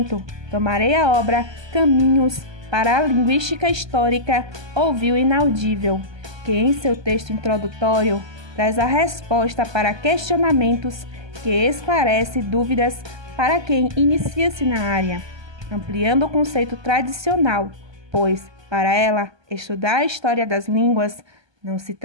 tomarei a obra Caminhos para a Linguística Histórica Ouviu o Inaudível, que em seu texto introdutório traz a resposta para questionamentos que esclarece dúvidas para quem inicia-se na área, ampliando o conceito tradicional, pois, para ela, estudar a história das línguas não se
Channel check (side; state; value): left; late; 1.2 ms